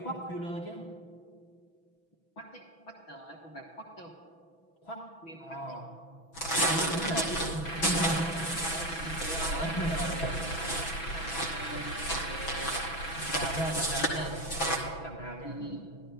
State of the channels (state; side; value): late; right; 6.1 ms